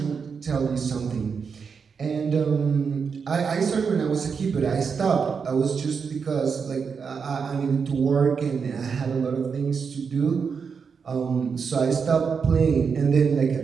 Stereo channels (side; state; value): left; quieter; 5.9 dB